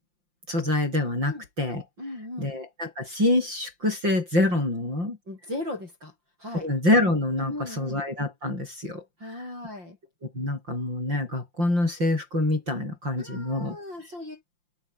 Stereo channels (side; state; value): left; late; 5.7 ms